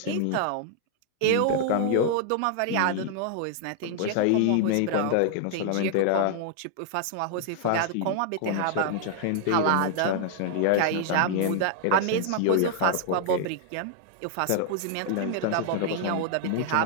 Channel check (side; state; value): both; different; correlation -0.01